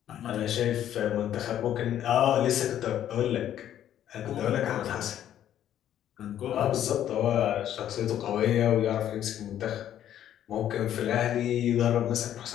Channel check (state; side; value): quieter; right; 11.0 dB